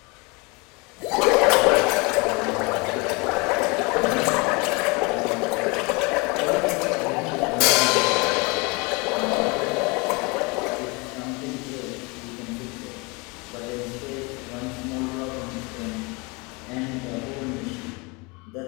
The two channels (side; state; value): right; quieter; 28.1 dB